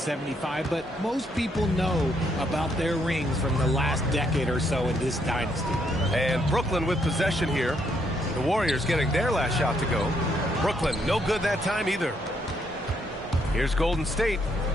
But most people know about their rings from the last decade or so in this dynasty. And Brooklyn with possession here. The Warriors getting their last shot to go. Brooklyn, no good that time either. Here's Golden State.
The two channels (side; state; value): both; normal; correlation 0.73